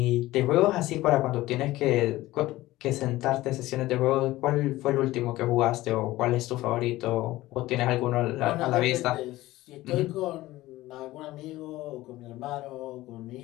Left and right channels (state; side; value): quieter; right; 17.2 dB